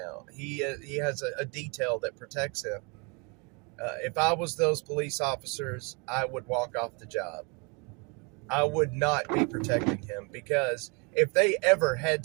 He has a detail that protects him. If I was those police officers, I would walk off the job. I would not be protecting him, because if they ever had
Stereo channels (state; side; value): quieter; left; 32.0 dB